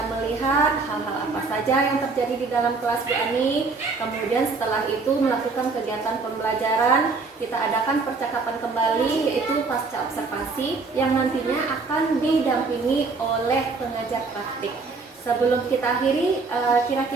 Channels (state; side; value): quieter; left; 4.2 dB